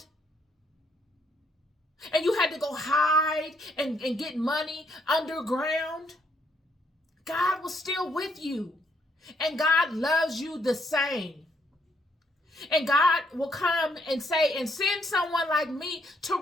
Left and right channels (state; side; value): normal; both; correlation 0.72